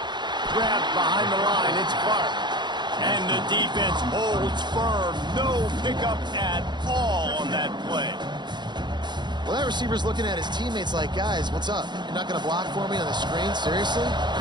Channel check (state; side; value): late; left; 0.21 ms